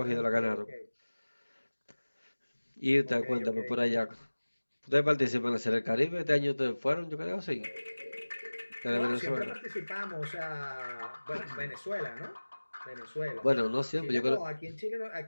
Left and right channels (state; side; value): inverted; both; correlation -1.00